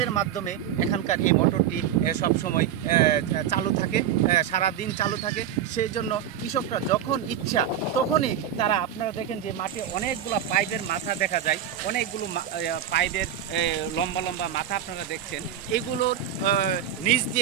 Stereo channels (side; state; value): left; quieter; 9.7 dB